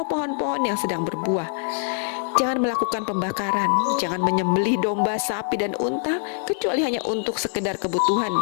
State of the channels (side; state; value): right; silent; 58 dB below the other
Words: pohon-pohon yang sedang berbuah, jangan melakukan pembakaran, jangan menyembelih domba, sapi, dan unta kecuali hanya untuk sekedar kebutuhan